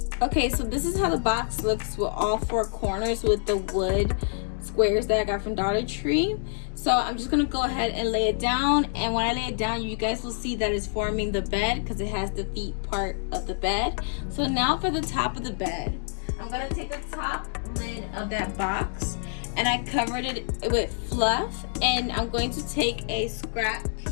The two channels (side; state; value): right; silent; digital silence